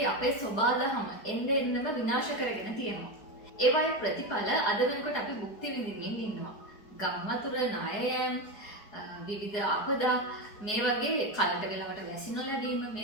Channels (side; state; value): right; late; 4.7 ms